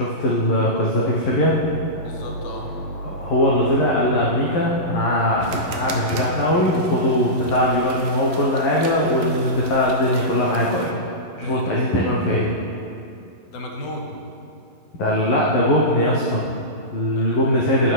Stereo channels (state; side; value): late; right; 11 ms